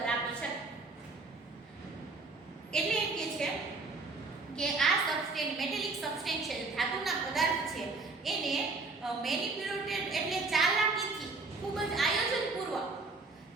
આપી શકે. એટલે એમ કે છે કે આ સબસ્ટેન્સ, મેટેલિક સબસ્ટેન્સ છે, ધાતુના પદાર્થ છે, એને મેનિપ્યુલેટેડ એટલે ચાલાકીથી, ખૂબ જ આયોજનપૂર્વક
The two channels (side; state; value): left; quieter; 3.7 dB